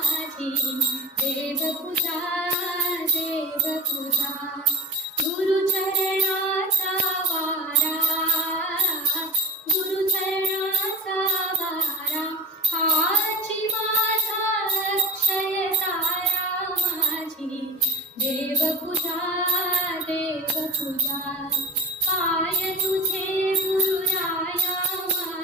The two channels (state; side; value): normal; both; correlation 0.31